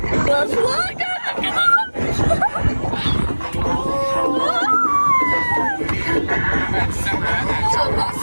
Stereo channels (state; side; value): inverted; both; correlation -1.00